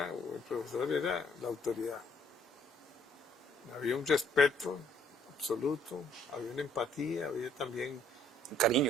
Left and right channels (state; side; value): normal; both; correlation 0.63